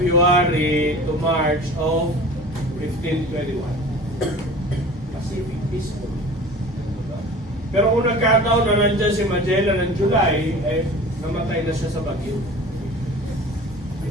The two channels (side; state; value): both; normal; correlation 0.41